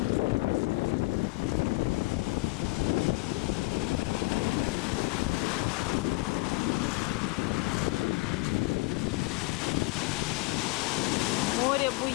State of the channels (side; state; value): right; quieter; 22.6 dB